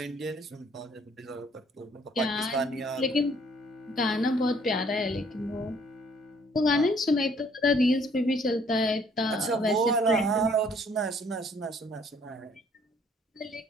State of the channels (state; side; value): normal; both; correlation 0.62